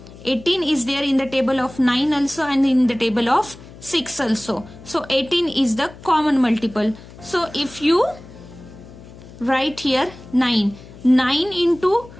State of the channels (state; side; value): noise; left; hum, 19 dB below the sound